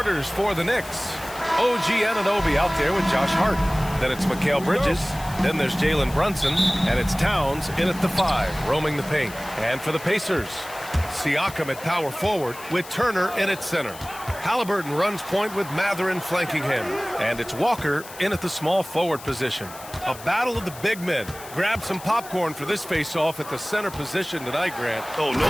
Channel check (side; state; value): left; noise; hiss, 16 dB below the sound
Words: starters for the Knicks. OG Anunoby out there with Josh Hart. Then it's Mikal Bridges. Then there's Jalen Brunson. And it's Towns in at the 5, roaming the paint. And for the Pacers, Siakam at power forward with Turner in at center. Halliburton runs point with Mathurin flanking him. And it's Walker in at the small forward position. A battle of the big men. Grab some popcorn for this face-off at the center position tonight, Grant. Oh, no